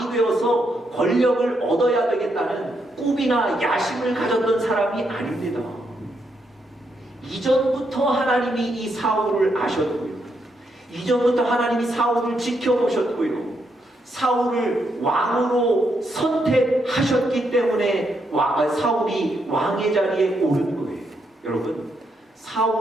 되어서 권력을 얻어야 되겠다는 꿈이나 야심을 가졌던 사람이 아닙니다. 이전부터 하나님이 이 사울을 아셨고요, 이전부터 하나님이 사울을 지켜보셨고요, 사울을 왕으로 선택하셨기 때문에 사울이 왕의 자리에 오른 거예요. 여러분,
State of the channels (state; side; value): normal; both; correlation 0.79